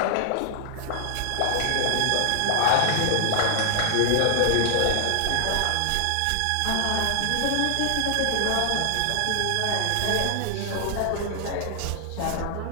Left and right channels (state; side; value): different; both; correlation 0.00